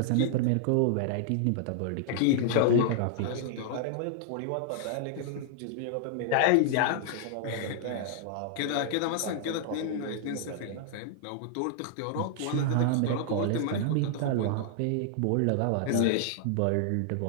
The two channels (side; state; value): both; different; correlation -0.01